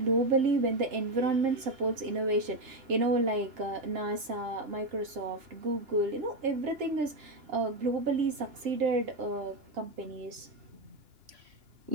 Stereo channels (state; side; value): late; left; 2.9 ms